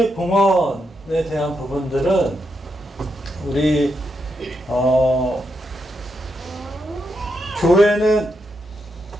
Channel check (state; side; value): normal; both; correlation 0.83